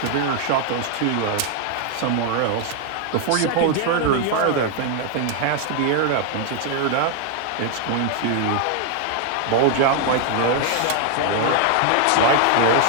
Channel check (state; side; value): different; both; correlation 0.00